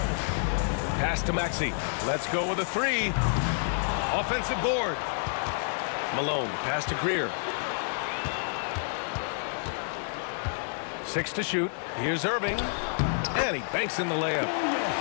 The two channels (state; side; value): silent; right; digital silence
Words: Pass to Maxey. Let's go with a three. Offensive board. Malone, pass to Greer. 6 to shoot. Here's Irving. And he banks in the layup.